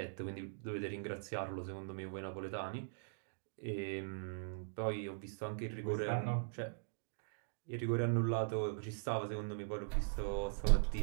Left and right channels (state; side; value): silent; left; digital silence